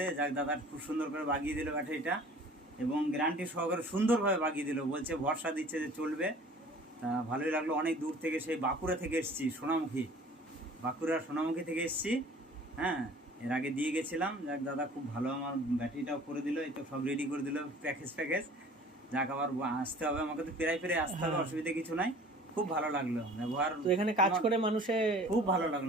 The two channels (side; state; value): both; normal; correlation 0.48